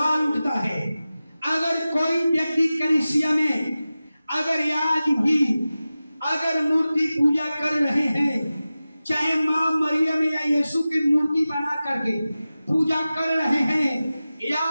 उठता है, अगर कोई व्यक्ति कलीसिया में अगर आज भी अगर मूर्ति पूजा कर रहे हैं, चाहे मां मरियम या यीशु की मूर्ति बना करके पूजा कर रहे हैं, या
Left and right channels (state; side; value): inverted; both; correlation -0.95